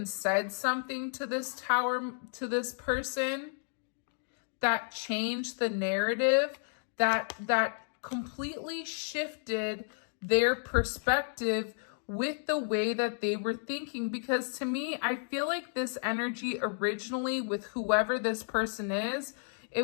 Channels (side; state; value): right; silent; 56 dB below the other